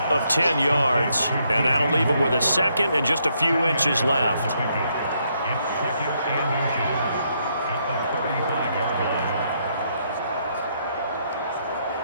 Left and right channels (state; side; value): inverted; both; correlation -0.75